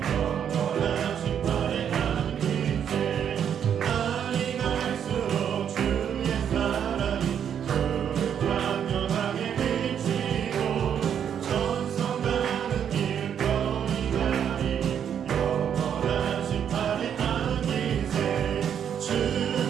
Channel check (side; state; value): left; quieter; 8.6 dB